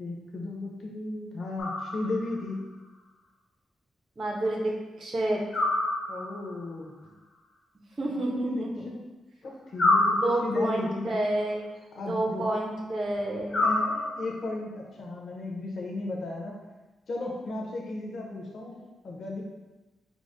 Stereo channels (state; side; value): normal; both; correlation 0.81